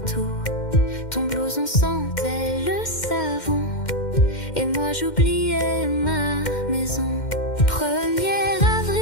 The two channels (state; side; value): late; right; 2.1 ms